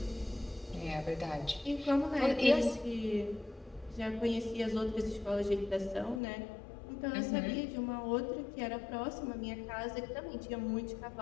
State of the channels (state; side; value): drops out; right; at 6.2 s